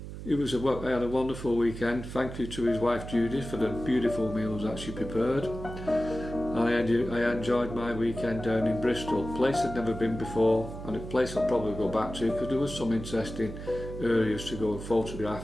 I had a wonderful weekend. Thank you to his wife Judith for the beautiful meals that she prepared. And I enjoyed my weekend down in Bristol, a place I'd never been before, and a place I'll probably go back to because there was some interesting areas to go and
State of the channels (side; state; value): right; noise; hum, 10 dB below the sound